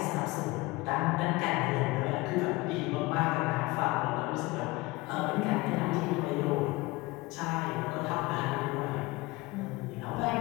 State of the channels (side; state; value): right; quieter; 22.1 dB